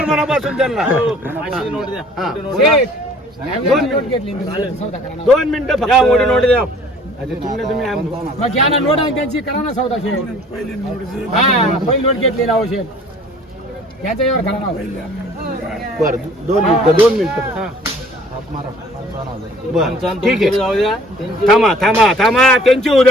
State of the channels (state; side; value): normal; both; correlation 0.52